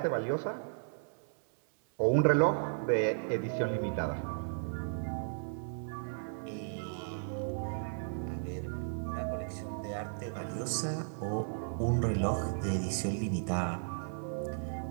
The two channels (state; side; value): silent; left; 55 dB below the other